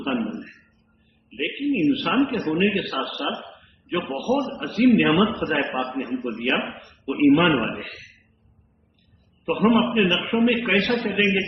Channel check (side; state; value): both; identical; correlation 1.00